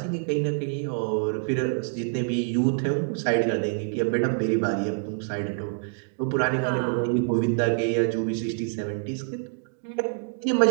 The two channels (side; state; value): left; silent; 61 dB below the other